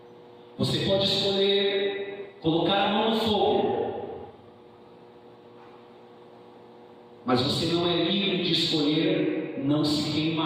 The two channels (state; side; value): identical; both; correlation 1.00